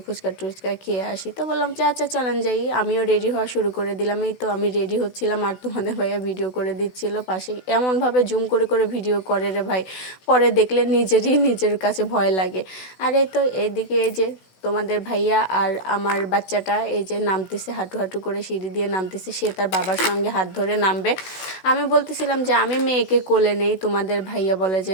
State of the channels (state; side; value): late; right; 16 ms